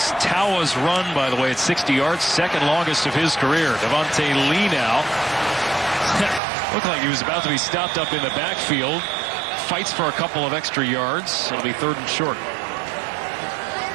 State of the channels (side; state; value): left; drops out; at 6.4 s